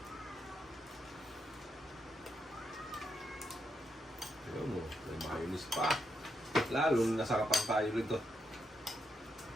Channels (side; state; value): both; normal; correlation 0.82